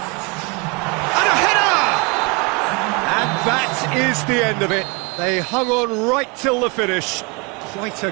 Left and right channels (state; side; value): quieter; left; 29.8 dB